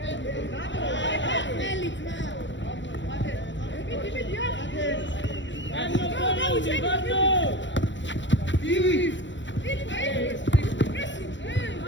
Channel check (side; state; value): right; late; 0.54 ms